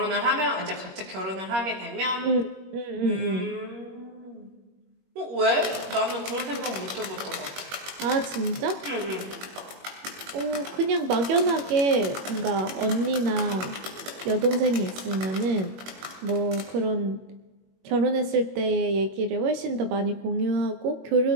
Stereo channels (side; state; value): left; late; 21 ms